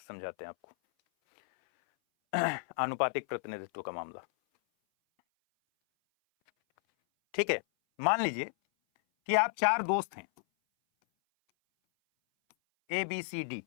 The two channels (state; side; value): silent; right; 56 dB below the other